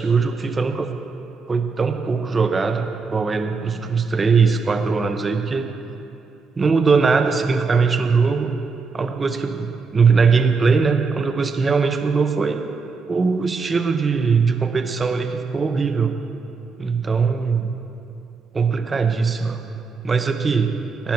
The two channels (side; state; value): left; quieter; 4.7 dB